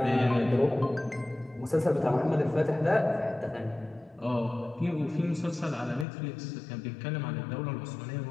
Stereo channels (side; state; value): right; drops out; at 6.1 s